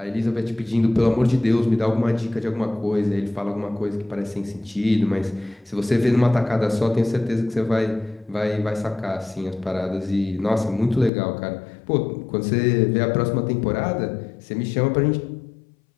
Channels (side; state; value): right; drops out; at 11.1 s